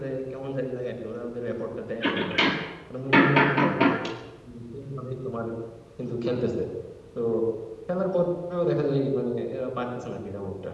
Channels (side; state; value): both; identical; correlation 1.00